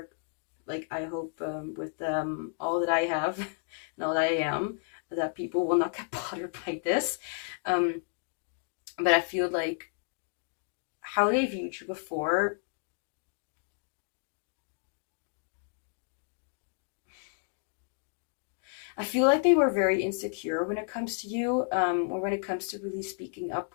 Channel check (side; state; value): right; silent; 56 dB below the other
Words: like, I hope with all that I have and all that I am, that people will not get bothered by this. But I feel like how they viewed you before, I feel like they were very insecure when it comes to you, or when it comes to really speaking up